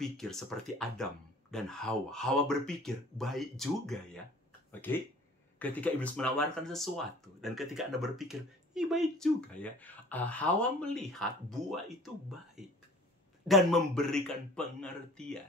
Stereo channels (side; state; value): both; normal; correlation 0.48